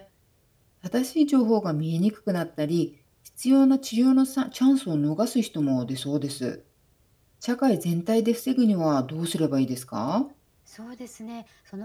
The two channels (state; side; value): identical; both; correlation 1.00